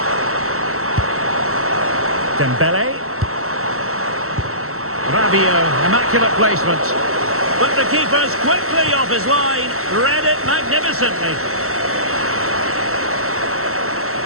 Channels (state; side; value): late; left; 0.63 ms